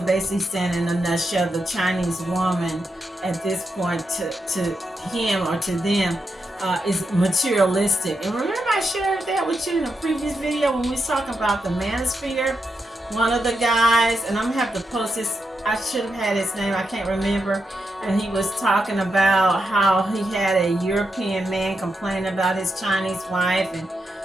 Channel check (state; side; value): normal; both; correlation 0.85